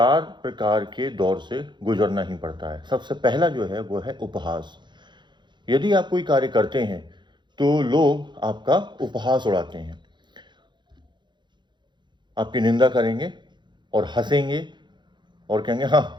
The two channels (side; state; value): left; late; 0.22 ms